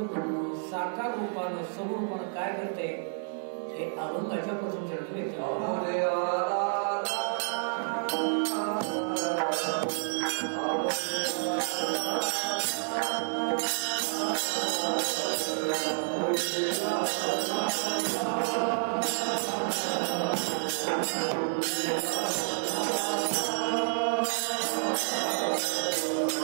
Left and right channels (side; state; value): left; silent; digital silence